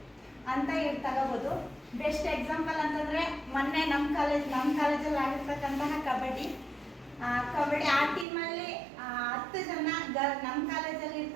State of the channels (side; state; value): left; drops out; at 8.2 s